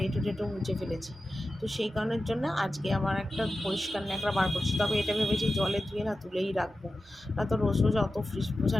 এঁটো টেটো মুছে ফেলেছি, তো সেই কারণের জন্য আজকে আমার একটা পরিষ্কার ন্যাকড়া বার করছি। তবে এটা ভেবেছি জলে ধুয়ে না তুলেই রাখবো, না তো রোজ রোজ অত ফ্রিজ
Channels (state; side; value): normal; both; correlation 0.93